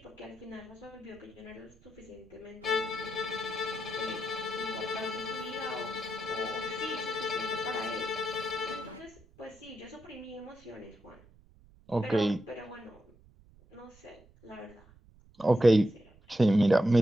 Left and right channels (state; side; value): noise; right; rumble, 26 dB below the sound